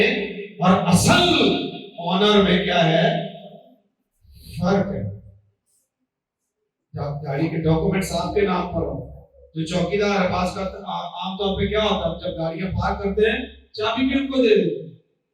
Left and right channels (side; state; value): both; identical; correlation 1.00